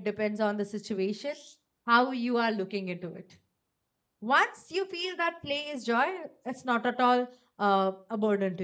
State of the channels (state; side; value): identical; both; correlation 1.00